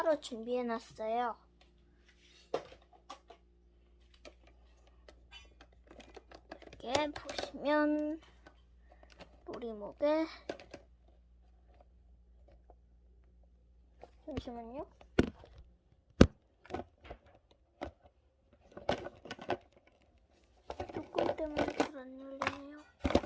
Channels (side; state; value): both; identical; correlation 1.00